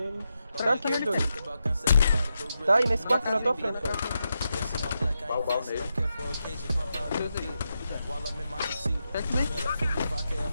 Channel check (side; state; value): both; inverted; correlation -0.86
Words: Tá aqui os dois. Tá aí nesse quarto na tua frente, cara. Bal nele.